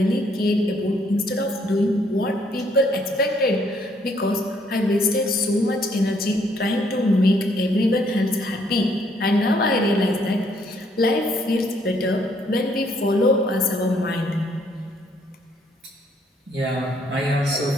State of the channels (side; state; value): both; normal; correlation 0.68